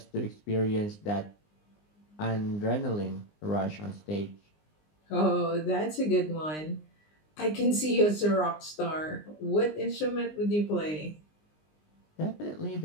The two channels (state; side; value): late; right; 19 ms